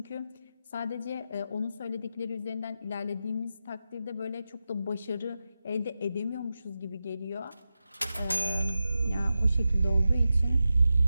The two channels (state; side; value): inverted; both; correlation -0.91